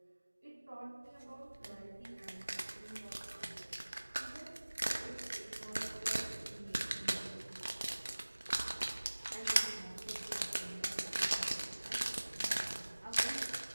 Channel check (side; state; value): both; inverted; correlation -1.00